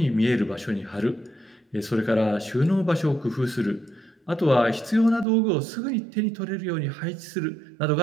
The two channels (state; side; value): drops out; left; at 5.2 s